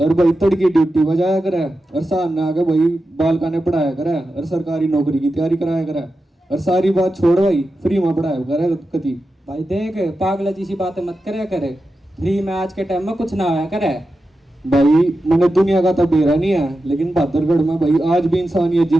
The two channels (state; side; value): normal; both; correlation 0.91